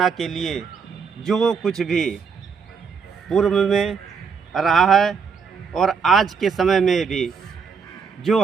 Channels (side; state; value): left; quieter; 5.8 dB